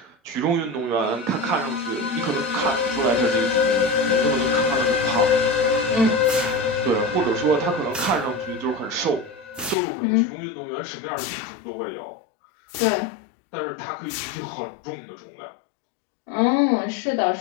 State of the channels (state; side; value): drops out; right; at 9.8 s